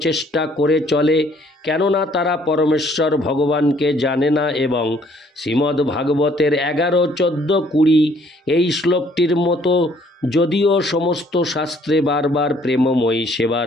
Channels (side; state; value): both; normal; correlation 0.62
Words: করে চলে, কেননা তারা পরমেশ্বর ভগবানকে জানে না এবং শ্রীমদ্ ভাগবতের ১১, ১৪, ২০ এই শ্লোকটির মতো যদিও সমস্ত শাস্ত্রে বারবার প্রেমময়ী